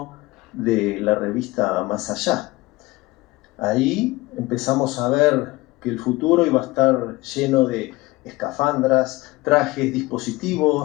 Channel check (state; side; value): quieter; right; 20.7 dB